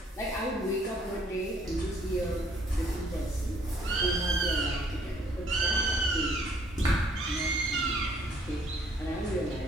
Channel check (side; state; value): both; normal; correlation 0.63